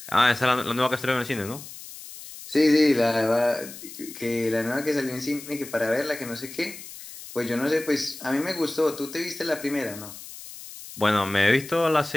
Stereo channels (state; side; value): noise; left; hiss, 14 dB below the sound